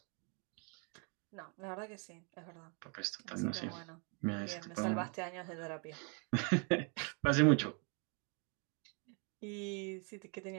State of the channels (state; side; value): quieter; left; 36.5 dB